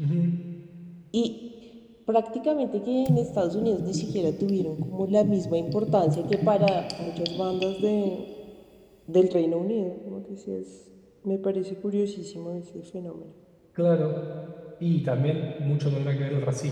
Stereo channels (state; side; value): identical; both; correlation 1.00